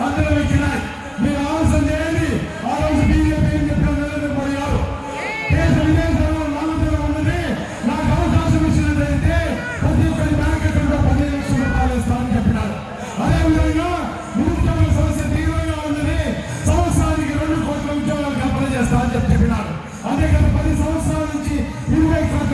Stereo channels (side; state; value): both; identical; correlation 1.00